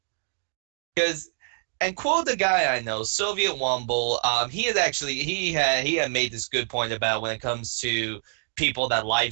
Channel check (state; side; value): silent; left; digital silence